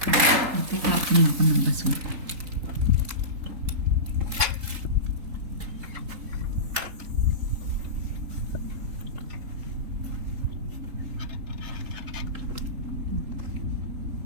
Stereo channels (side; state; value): left; late; 3.8 ms